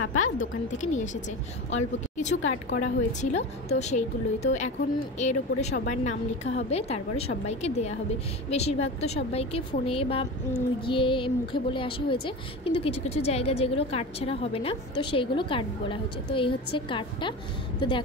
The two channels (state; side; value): normal; both; correlation 0.28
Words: পাপা দোকান থেকে নিয়ে এসেছে, অল্প কিছু কার্ড করা হয়েছিল, তো সেইগুলোই। তো এখন এর ওপরে সবার নাম লেখা হবে, তারপরে সবাইকে দেয়া হবে। বেশিরভাগ তো সবাইকে ফোনে বা গিয়ে মুখে বলে আসা হয়েছে, কিন্তু কিছু কিছু জায়গা যেগুলো কার্ড ছাড়া হবে না, তো সেইগুলো কার্ড বলা হয়েছে। তো এই হচ্ছে কার্ডটা। তো